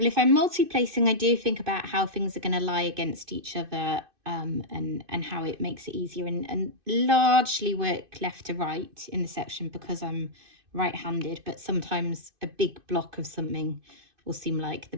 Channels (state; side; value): late; left; 2.6 ms